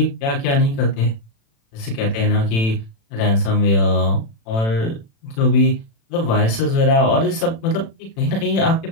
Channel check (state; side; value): late; right; 36 ms